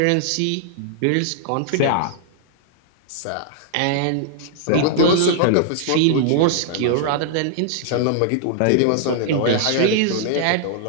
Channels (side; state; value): both; different; correlation -0.01